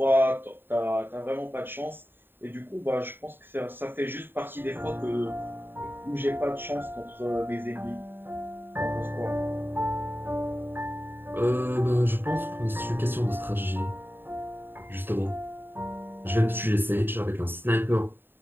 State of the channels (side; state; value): left; late; 0.097 ms